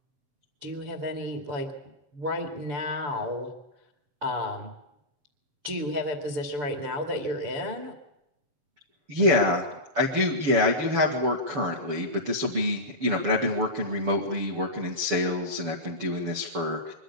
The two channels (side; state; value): left; late; 6.9 ms